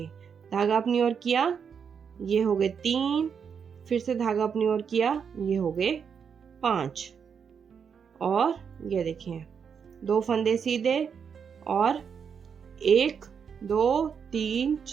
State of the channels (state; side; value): quieter; left; 6.8 dB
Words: धागा अपनी ओर किया, ये हो गए 3, फिर से धागा अपनी ओर किया, ये हो गए 5। और ये देखिए 2 फंदे सीधे और 1 2 3